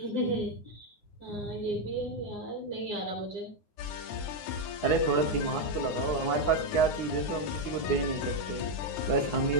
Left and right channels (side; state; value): right; late; 9.8 ms